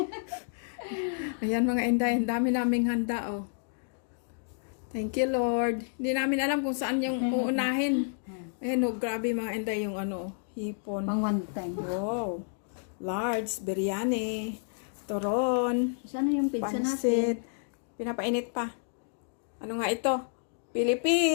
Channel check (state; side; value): silent; right; digital silence